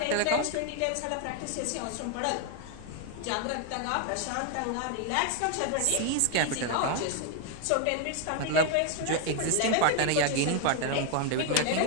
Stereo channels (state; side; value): different; both; correlation 0.01